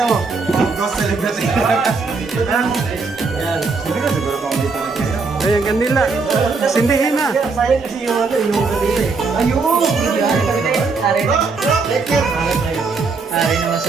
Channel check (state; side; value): quieter; left; 4.4 dB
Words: mo. Ghost celebrity. Yan. Hindi ka siguro kung dito na kayo. Ayan, kanila. Sindihin na. Sayang kasi yung ano, yung kanila eh. Ayun! Hari naman